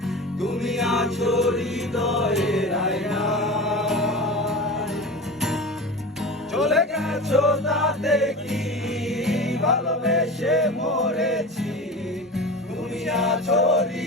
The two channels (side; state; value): both; normal; correlation 0.30